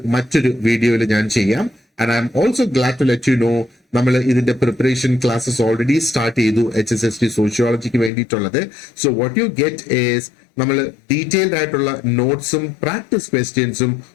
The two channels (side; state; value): right; drops out; at 8.1 s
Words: മറ്റൊരു വീഡിയോയിൽ ഞാൻ ചെയ്യാം. And I am also glad to let you know നമ്മൾ ഇതിന്റെ പ്രിപ്പറേഷൻ ക്ലാസ്സസ് ഓൾറെഡി സ്റ്റാർട്ട് ചെയ്തു HSST സോഷ്യോളജിക്ക് വേണ്ടിയിട്ടുള്ളത്. So what you get is നമ്മൾ ഡീറ്റെയിൽഡ് ആയിട്ടുള്ള നോട്ട്സും പ്രാക്ടീസ് ക്വസ്റ്റ്യൻസും